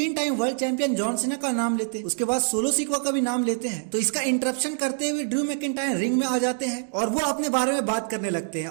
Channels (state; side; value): silent; left; digital silence